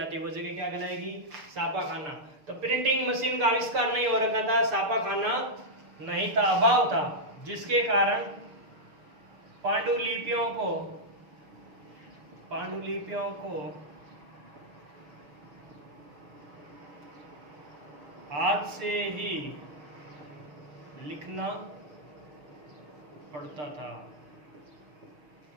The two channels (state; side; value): late; left; 6.7 ms